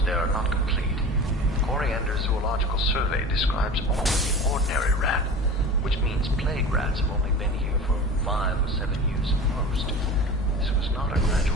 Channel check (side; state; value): both; normal; correlation 0.35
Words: data are not complete. Coriander Zoological Survey describes only the ordinary rat, which means plague rats have only been here for 5 or 7 years at most. This was not a